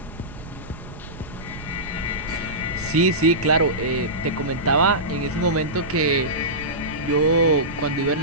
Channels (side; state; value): right; noise; rumble, 14 dB below the sound